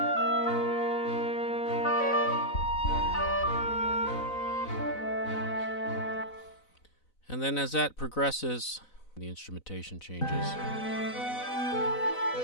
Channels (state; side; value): late; right; 4.0 ms